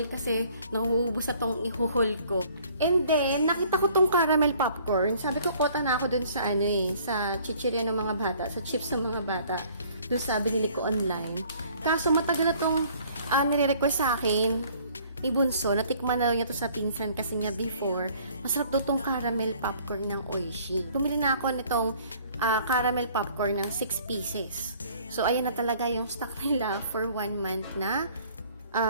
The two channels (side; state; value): both; inverted; correlation -0.57